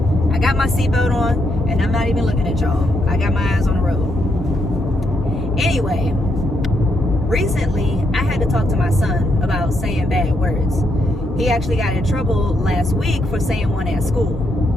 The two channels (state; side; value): normal; both; correlation 0.78